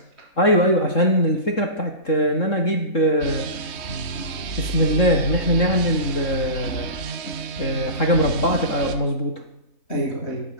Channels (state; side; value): late; right; 3.7 ms